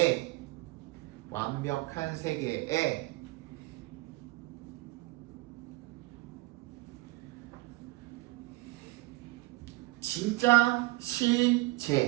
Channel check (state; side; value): quieter; left; 21.7 dB